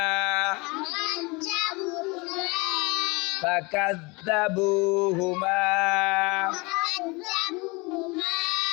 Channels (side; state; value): right; quieter; 26.7 dB